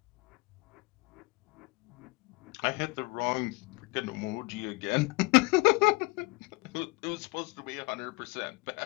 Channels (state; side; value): quieter; right; 24.7 dB